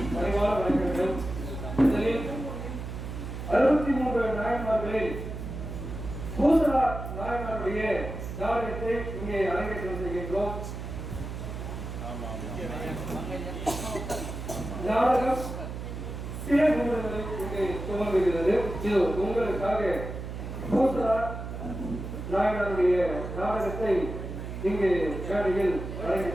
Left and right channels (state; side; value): noise; right; hum, 7 dB below the sound